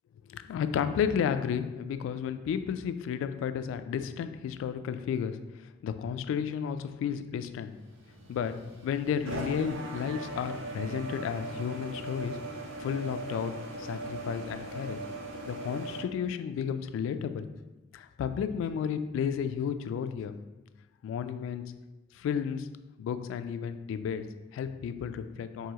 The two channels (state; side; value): quieter; right; 6.3 dB